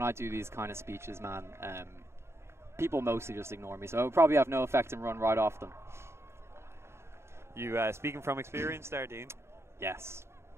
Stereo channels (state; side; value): late; left; 0.13 ms